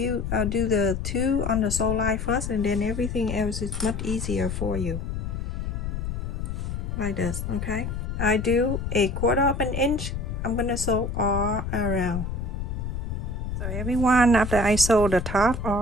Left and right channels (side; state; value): left; noise; rumble, 4 dB below the sound